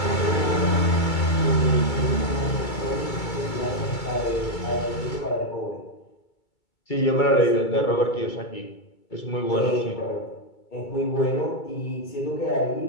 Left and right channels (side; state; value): right; late; 2.3 ms